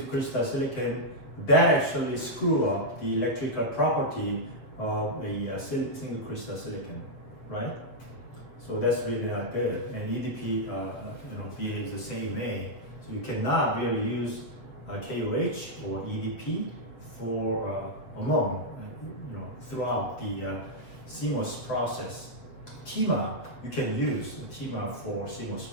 crystal silicon, that actually screw up the electrical property of a single crystal silicon, right? So that's really not good. And EDP, behaves the same way. So you cannot really use KOH or EDP for throughout the CMOS process. TIMA, you can use TIMA for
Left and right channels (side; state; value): right; late; 7.7 ms